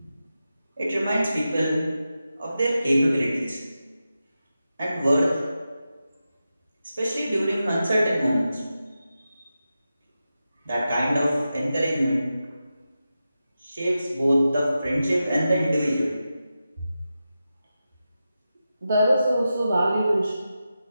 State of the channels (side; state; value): both; inverted; correlation -0.91